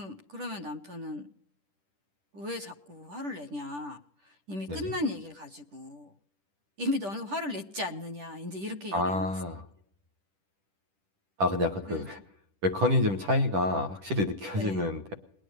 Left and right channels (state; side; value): late; left; 10 ms